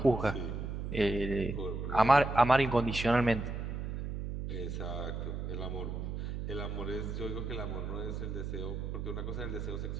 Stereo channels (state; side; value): noise; right; hum, 4 dB below the sound